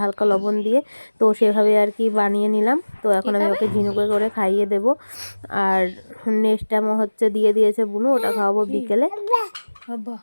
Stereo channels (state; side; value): inverted; both; correlation -1.00